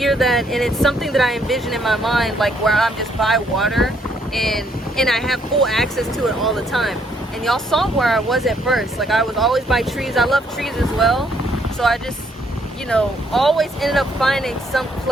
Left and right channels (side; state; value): both; normal; correlation 0.69